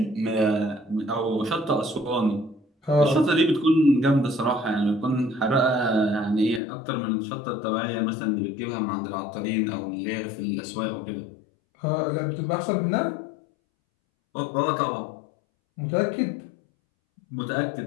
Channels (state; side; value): drops out; right; at 6.6 s